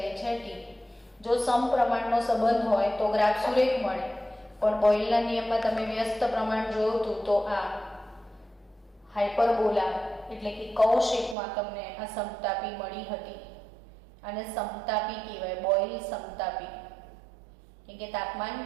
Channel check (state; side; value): drops out; left; at 11.4 s